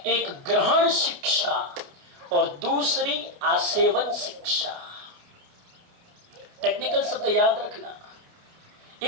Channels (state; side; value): late; left; 29 ms